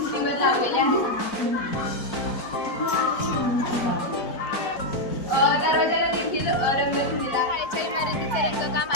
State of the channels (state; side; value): late; right; 4.5 ms